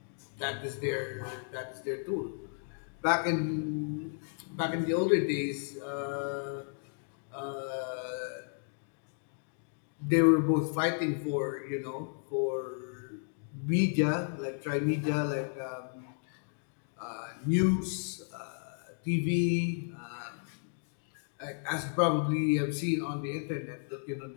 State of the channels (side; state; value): right; silent; digital silence